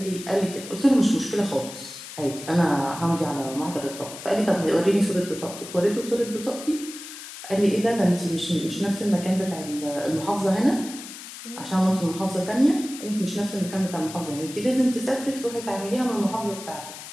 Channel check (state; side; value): noise; left; hiss, 12 dB below the sound